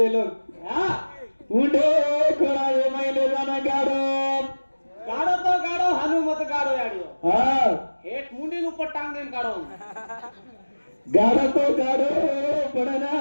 लोग उंडे खोड़ा मैले जाना गाड़ो गाड़ो तो गाड़ो हानु मत गाड़ो याडियो हाँ हेट मुंडी ऊपर टांग देन गाड़ो गाड़ो तो गाड़ो पड़े ना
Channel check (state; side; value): inverted; both; correlation -1.00